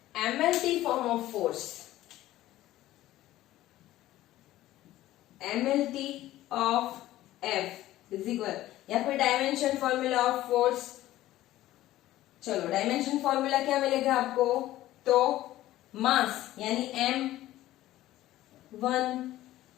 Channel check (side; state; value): right; quieter; 15.0 dB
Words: MLT form of force. MLT of F is equal, या फिर डायमेंशन फॉर्मूला ऑफ फोर्स. चलो, डायमेंशन फॉर्मूला क्या मिलेगा आपको? तो मास यानी m1,